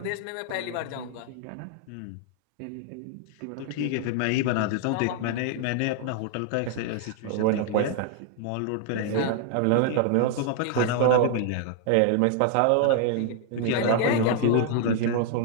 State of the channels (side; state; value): both; different; correlation 0.00